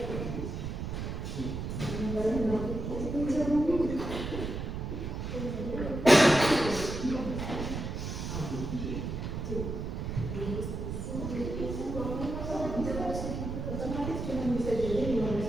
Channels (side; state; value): right; noise; rumble, 4 dB below the sound